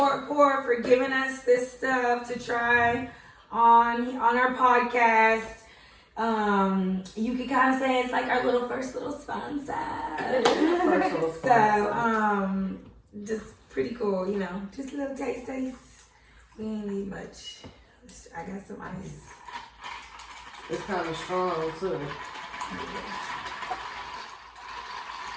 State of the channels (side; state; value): both; identical; correlation 1.00